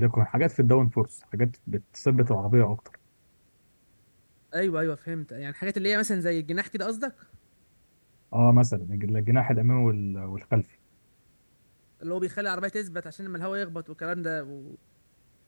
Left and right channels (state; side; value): inverted; both; correlation -1.00